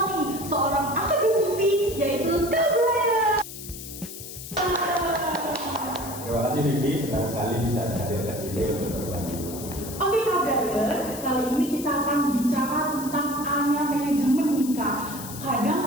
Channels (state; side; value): noise; left; hiss, 12 dB below the sound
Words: nih, seorang akademisi yaitu Kak Brian. Terima kasih Vivi, senang sekali bisa hadir ke sini untuk berbagi. Oke Kak Brian, kali ini kita akan bicara tentang A-nya manajemen nih Kak. Kadang